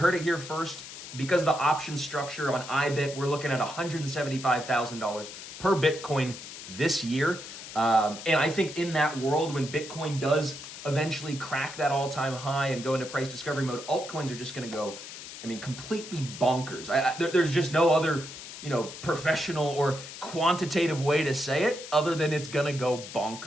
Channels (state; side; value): noise; left; hiss, 12 dB below the sound